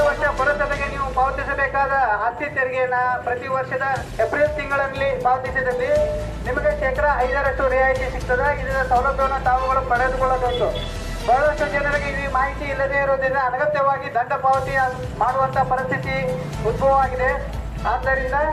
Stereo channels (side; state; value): both; identical; correlation 1.00